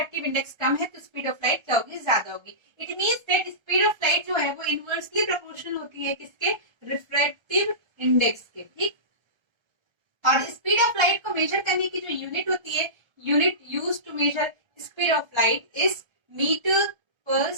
इंडेक्स कम है तो स्पीड ऑफ लाइट क्या होगी, ज्यादा होगी। It means that speed of light जो है वो इनवर्सली प्रोपोर्शनल होती है किसके, रिफ्रैक्टिव इंडेक्स के। ठीक। और स्पीड ऑफ लाइट को मेजर करने की जो यूनिट होती है, unit use to measure speed of light is metre per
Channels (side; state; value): left; late; 1.3 ms